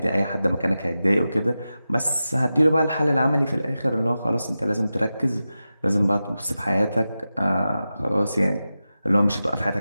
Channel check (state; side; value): inverted; both; correlation -0.93